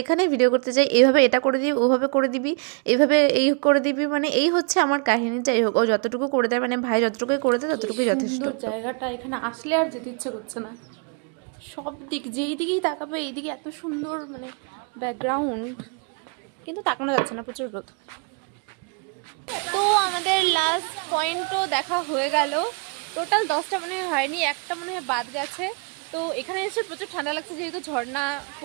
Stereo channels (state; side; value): quieter; left; 35.9 dB